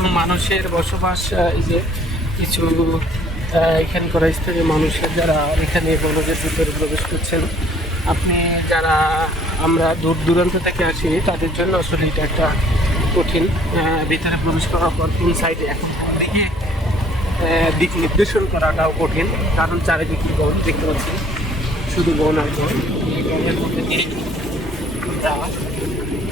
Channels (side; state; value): both; normal; correlation 0.58